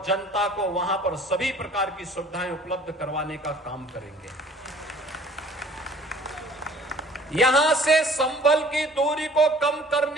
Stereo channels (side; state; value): both; normal; correlation 0.52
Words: जनता को वहां पर सभी प्रकार की सुविधाएं उपलब्ध करवाने का काम करेंगे। यहां से संभल की दूरी को कम